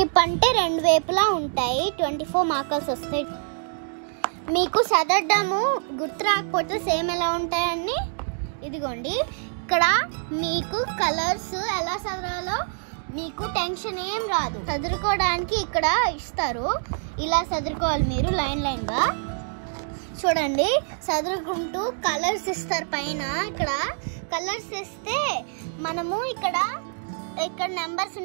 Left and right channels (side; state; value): left; silent; digital silence